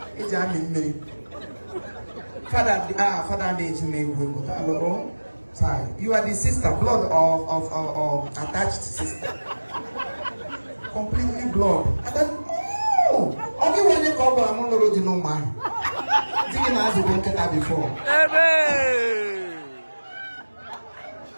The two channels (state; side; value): inverted; both; correlation -1.00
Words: It's me. Father, sorry. You are the sister, blood of attached sister. Completely blood. And then, only when you come, I'm not already know man. Didn't ask the banker before.